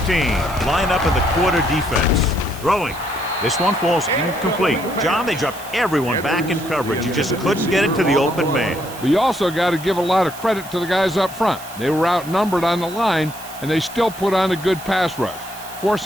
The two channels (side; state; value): right; noise; hiss, 16 dB below the sound